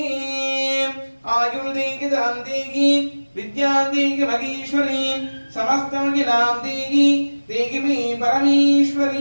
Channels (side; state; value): both; inverted; correlation -1.00